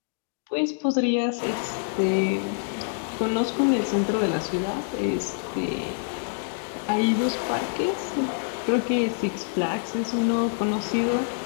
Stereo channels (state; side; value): silent; right; digital silence